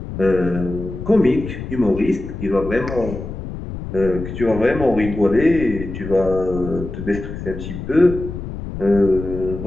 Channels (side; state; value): left; noise; rumble, 8 dB below the sound